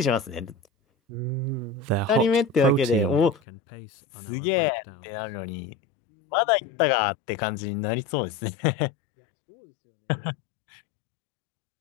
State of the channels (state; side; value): drops out; right; at 3.4 s